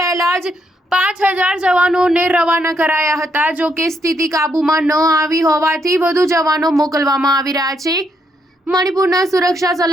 જ 5,000 જવાનોને રવાના કરાયા હતા। જો કે સ્થિતિ કાબૂમાં ન આવી હોવાથી વધુ જવાનો મોકલવામાં આવી રહ્યા છે। મણિપુરના સુરક્ષા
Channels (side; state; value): both; normal; correlation 0.75